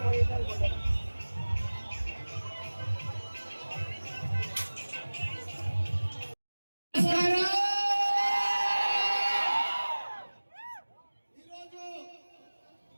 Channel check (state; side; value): inverted; both; correlation -1.00